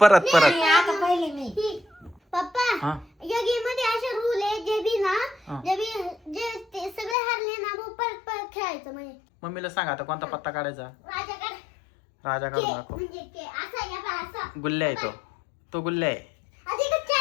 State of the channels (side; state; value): right; drops out; at 7.2 s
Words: परत परत. आता पहिले मी. पप्पा हा या गेम मध्ये असे रूल आहे जे बी ना हा. जे ते सगळे हारले ना मग परत परत खेळायचं म्हणजे. मम्मीला सांग आता कोणता पत्ता काढायचा. राजा काढ. राजा काढून दाखव. म्हणजे के असा या बा असा. गुल्ल्या आहे तो. तो गुल्ल्या आहे. आता एकच